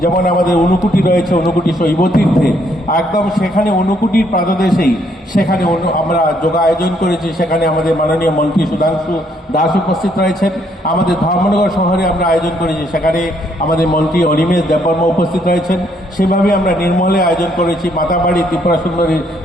যেমন আমাদের ঊনকোটি রয়েছে, ঊনকোটি শৈবতীর্থে, একদম সেখানে ঊনকোটির প্রাতদেশেই সেখানে আমরা যোগা আয়োজন করেছি। সেখানে আমাদের মাননীয় মন্ত্রী সুধাংশু দাস উপস্থিত রয়েছেন। আমাদের ধর্মনগর শহরে আমরা আয়োজন করেছি, সেখানে আমাদের মন্ত্রী অনিমেষ দেববর্মা উপস্থিত রয়েছেন। সেভাবে আমরা নির্মলে আয়োজন করেছি, মাতাবাড়ি ত্রিপুরা সুন্দরী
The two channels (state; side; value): normal; both; correlation 0.70